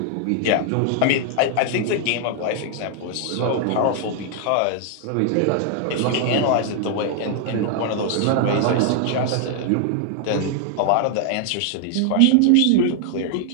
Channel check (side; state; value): both; different; correlation 0.00